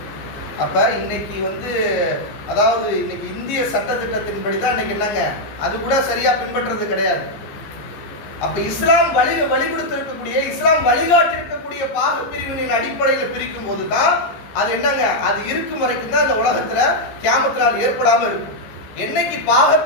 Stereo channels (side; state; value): right; late; 14 ms